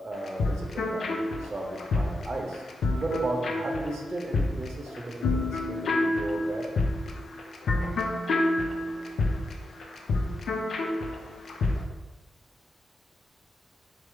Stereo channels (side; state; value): both; normal; correlation 0.86